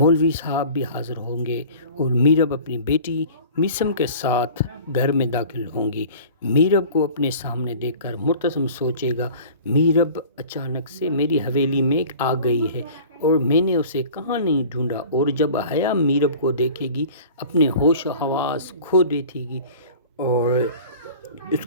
صاحب بھی حاضر ہوں گے اور میرب اپنی بیٹی میسم کے ساتھ گھر میں داخل ہوں گی. میرب کو اپنے سامنے دیکھ کر مرتسم سوچے گا، میرب اچانک سے میری حویلی میں آ گئی ہے اور میں نے اسے کہاں نہیں ڈھونڈا. اور جب حیا میرب کو دیکھے گی اپنے ہوش و حواس کھو دیتی گی اور اس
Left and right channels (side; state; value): both; inverted; correlation -0.43